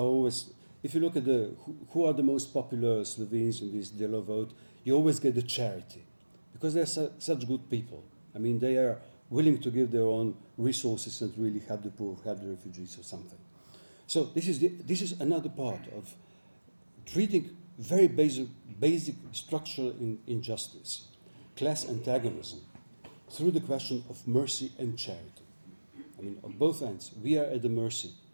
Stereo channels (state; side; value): inverted; both; correlation -1.00